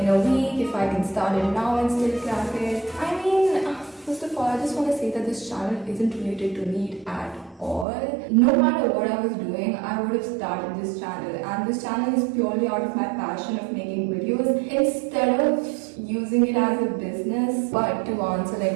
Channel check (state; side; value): drops out; left; at 7.9 s